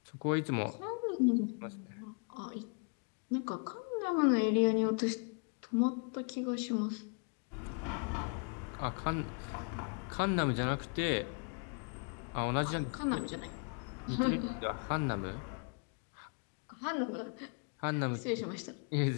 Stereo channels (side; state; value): right; quieter; 39.0 dB